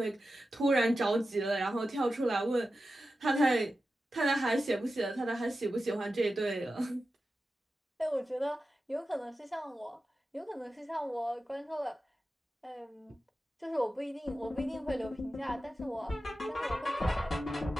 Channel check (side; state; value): both; normal; correlation 0.92